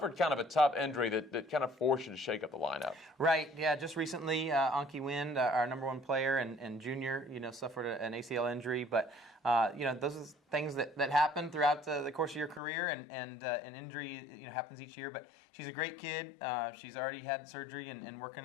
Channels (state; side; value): drops out; right; at 12.6 s